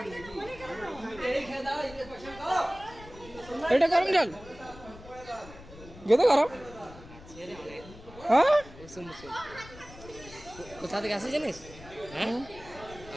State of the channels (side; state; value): left; noise; rumble, 18 dB below the sound